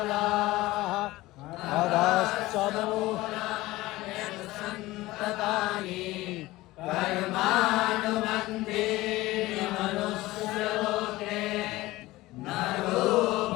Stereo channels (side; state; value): right; quieter; 18.6 dB